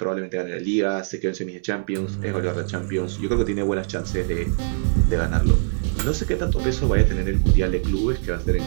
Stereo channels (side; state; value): left; silent; digital silence